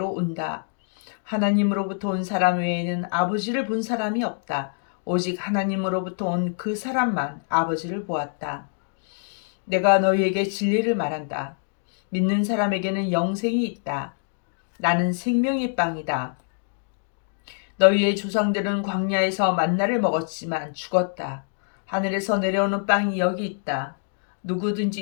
온다. 하나님으로부터 온 사람 외에는 아버지를 본 사람이 없다. 오직 하나님으로부터 온 그 사람만 아버지를 보았다. 내가 너희에게 진리를 말한다. 믿는 사람에게는 영생이 있다. 나는 생명의 빵이다. 너희의 조상들은 광야에서 만나를 먹었지만 죽었다. 하늘에서 내려오는 빵이 여기 있다. 누구든지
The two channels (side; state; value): right; silent; 62 dB below the other